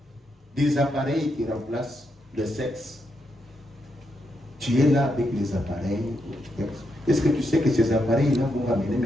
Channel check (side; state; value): both; normal; correlation 0.82